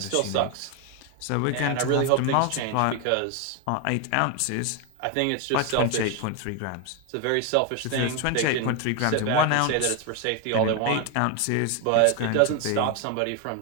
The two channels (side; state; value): both; different; correlation 0.01